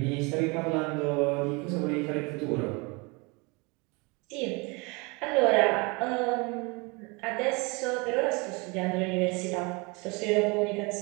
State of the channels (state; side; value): quieter; left; 28.2 dB